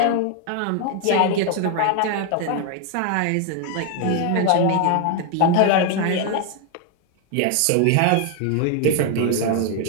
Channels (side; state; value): both; different; correlation 0.00